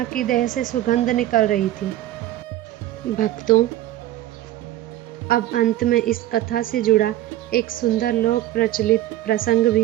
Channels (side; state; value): left; quieter; 14.3 dB